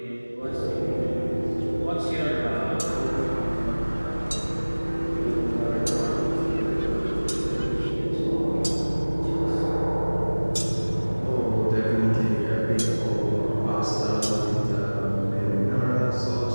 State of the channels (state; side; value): inverted; both; correlation -1.00